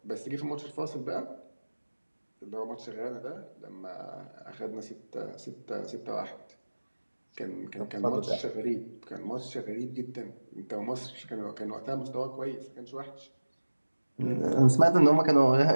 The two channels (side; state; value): both; inverted; correlation -1.00